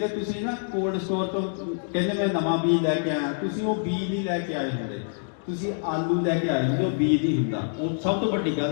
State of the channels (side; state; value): right; silent; digital silence